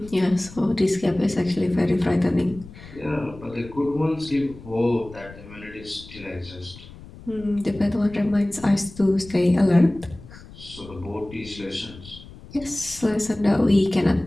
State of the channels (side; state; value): left; noise; rumble, 18 dB below the sound